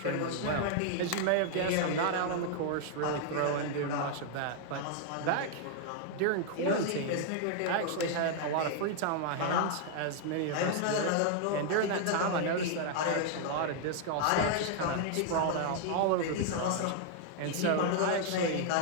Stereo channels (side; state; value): both; different; correlation 0.00